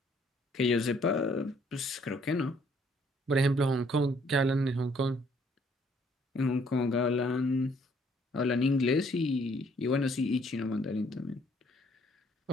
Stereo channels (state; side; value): normal; both; correlation 0.65